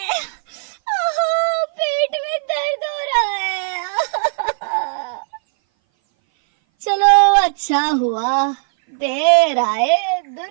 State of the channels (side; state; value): left; silent; 60 dB below the other